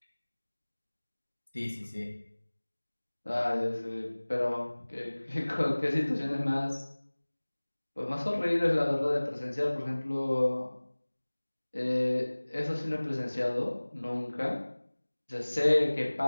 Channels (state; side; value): inverted; both; correlation -1.00